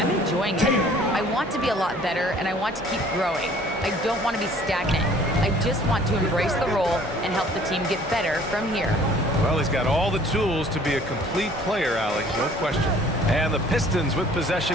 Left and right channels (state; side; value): normal; both; correlation 0.54